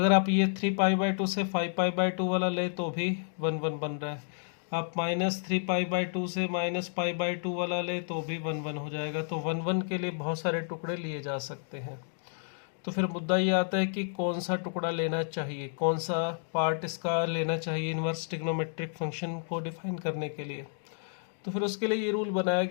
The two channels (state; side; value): silent; right; digital silence